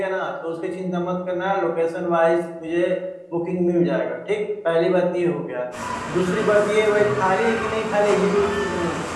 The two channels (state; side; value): identical; both; correlation 1.00